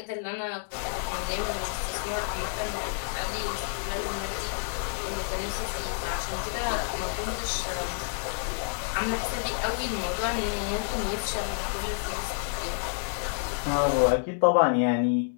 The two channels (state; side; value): silent; right; 57 dB below the other